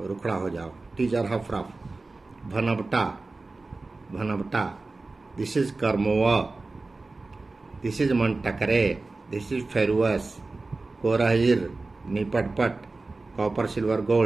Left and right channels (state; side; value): quieter; left; 3.5 dB